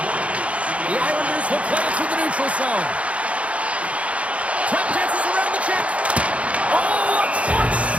The Islanders will play it through the neutral zone. Tap dances around the check. Oh, a clutch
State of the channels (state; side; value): late; left; 0.063 ms